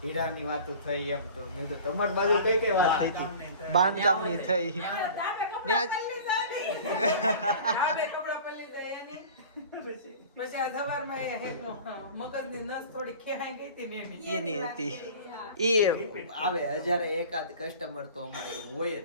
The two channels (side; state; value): both; inverted; correlation -0.40